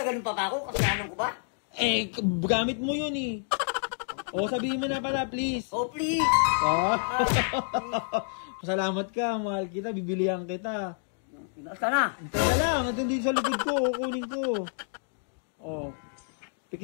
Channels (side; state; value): right; silent; digital silence